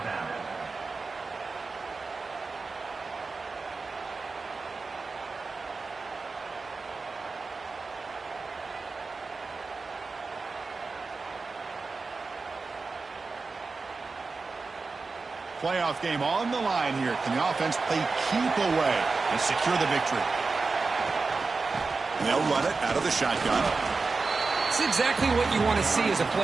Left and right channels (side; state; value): left; quieter; 4.1 dB